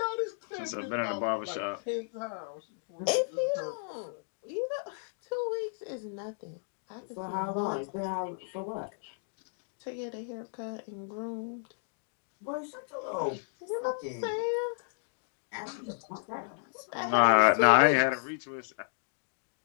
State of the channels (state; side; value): silent; right; digital silence